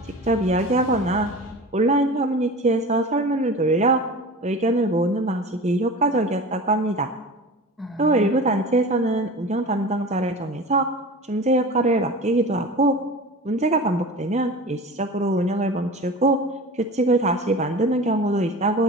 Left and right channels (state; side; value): normal; both; correlation 0.35